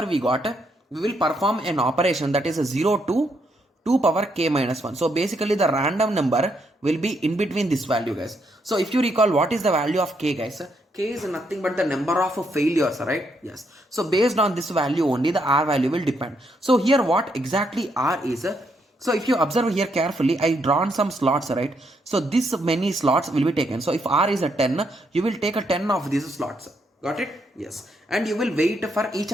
we got, we will perform an operation that is a 0 to 2 power k minus 1. So basically the random number will be in between this value, guys. So if you recall, what is the value of k, guys? K is nothing but the number of failures, right? Yes. So based on this value only, the R value will depend. So here what exactly R is, so if you observe here carefully, I drawn some slots, right? So this many slots will be taken. So if R is a 10, you will take a 10 of these slots. Got it? Yes. And you will wait for each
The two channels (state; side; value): normal; both; correlation 0.76